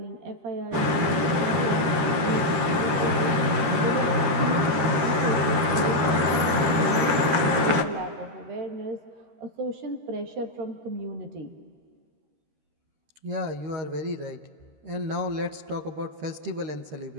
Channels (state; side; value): late; left; 13 ms